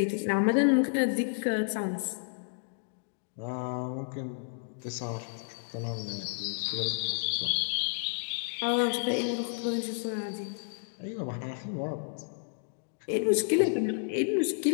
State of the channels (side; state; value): right; silent; digital silence